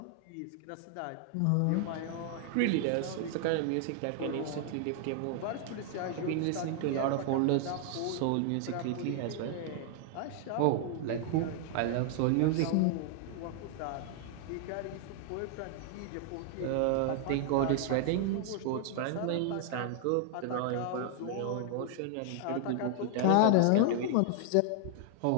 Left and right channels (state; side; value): different; both; correlation 0.00